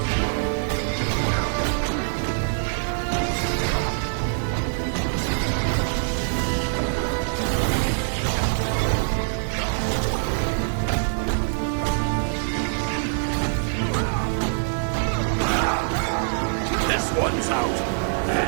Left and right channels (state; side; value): silent; left; digital silence